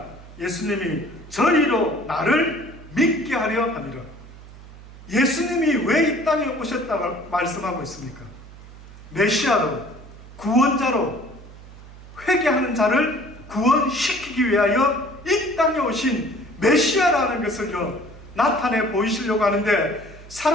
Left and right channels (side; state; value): right; noise; hum, 18 dB below the sound